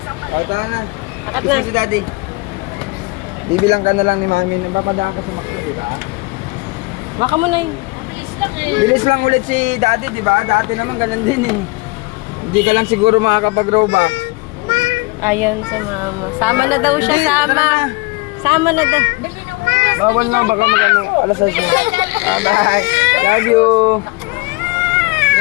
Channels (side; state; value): right; quieter; 25.1 dB